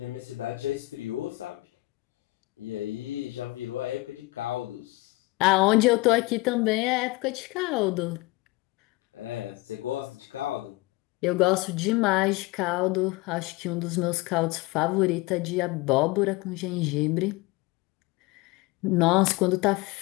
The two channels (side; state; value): right; quieter; 21.7 dB